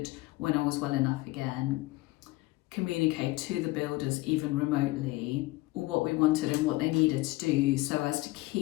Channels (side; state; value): right; quieter; 20.3 dB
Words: when I was well enough again, communicate to the builders even remotely what we wanted and what they needed to do so as to